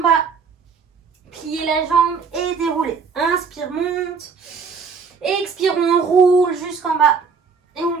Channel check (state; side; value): quieter; left; 5.4 dB